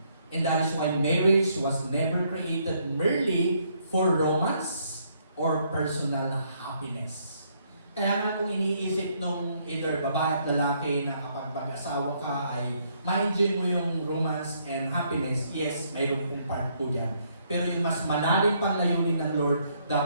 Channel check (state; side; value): inverted; both; correlation -0.70